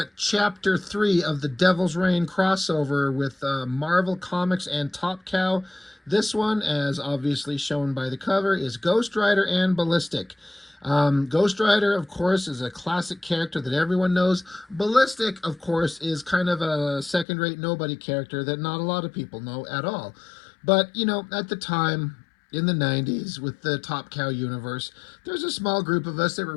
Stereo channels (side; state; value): right; drops out; at 17.2 s